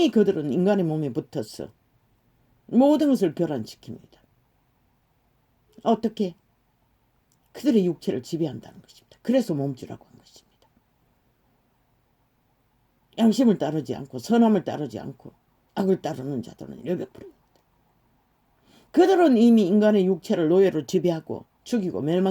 그들은 인간의 몸에 붙어서 모든 것을 교란시킵니다. 어떻게? 그들의 육체를 지배한다는 것입니다. 그래서 몸주라고 한 것입니다. 양심을 따르지 않고 선함을 따르지 않고 악을 따르는 자들은 100%입니다. 그들은 이미 인간의 육체를 노예로 지배하고 죽이고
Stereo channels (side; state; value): both; identical; correlation 1.00